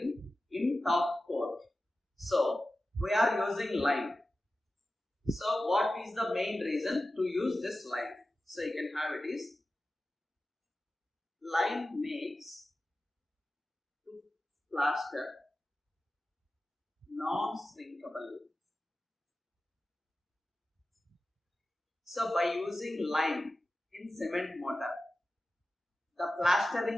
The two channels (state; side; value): normal; both; correlation 0.94